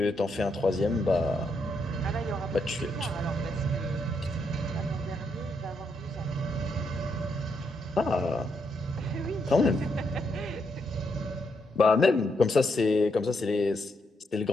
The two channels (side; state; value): both; normal; correlation 0.79